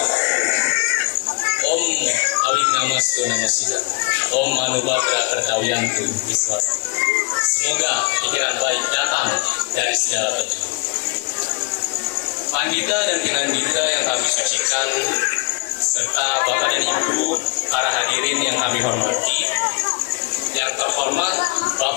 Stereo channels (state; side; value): quieter; right; 31.9 dB